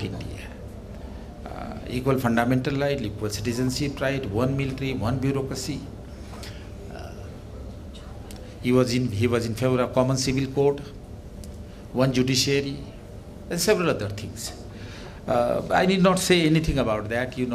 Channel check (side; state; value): both; identical; correlation 1.00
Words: India. Equal fundamental right, equal citizenship right, one military, one bureaucracy. He was in favor of common civil code, one judiciary, and several other things. I need not say anything about that.